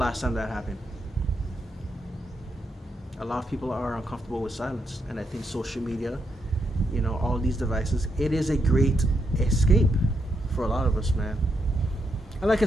time that happened? A lot of people are uncomfortable with silence, and I think social media, all these devices, it is a great escape for a lot of us, man. And like I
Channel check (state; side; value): normal; both; correlation 0.81